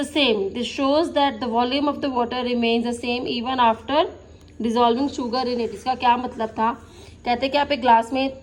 same. This shows that the volume of the water remains the same even after dissolving sugar in it. इसका क्या मतलब था, कहते हैं कि आप एक ग्लास में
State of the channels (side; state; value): both; identical; correlation 1.00